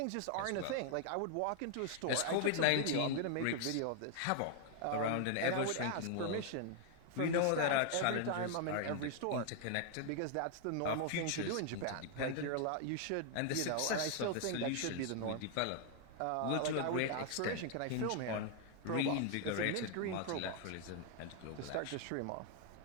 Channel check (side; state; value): both; different; correlation 0.00